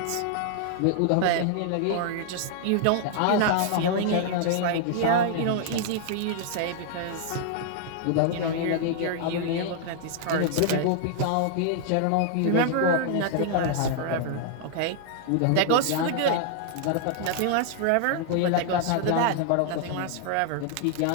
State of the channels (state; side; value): different; both; correlation -0.01